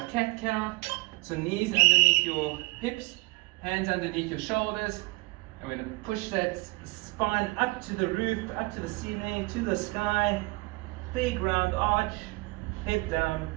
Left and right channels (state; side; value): quieter; left; 25.3 dB